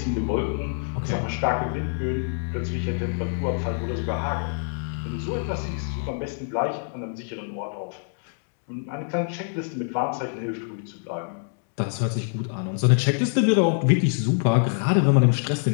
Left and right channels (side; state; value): right; silent; 61 dB below the other